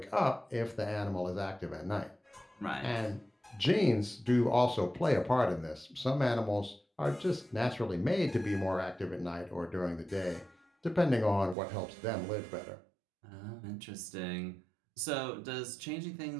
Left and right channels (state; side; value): drops out; left; at 11.6 s